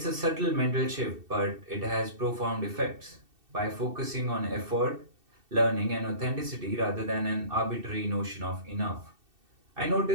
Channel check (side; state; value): left; late; 2.7 ms